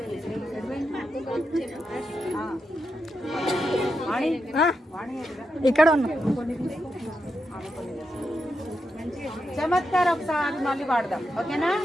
ఇక్కడ ఉన్నా చమత్కారం ఒకసారి మళ్ళీ వాడదాం. ఓకేనా?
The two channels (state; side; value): normal; both; correlation 0.86